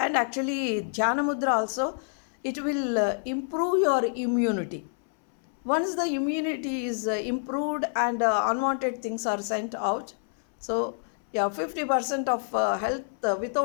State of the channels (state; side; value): silent; right; 60 dB below the other